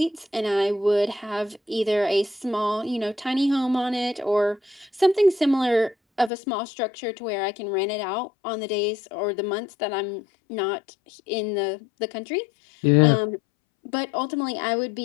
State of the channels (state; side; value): drops out; right; at 6.3 s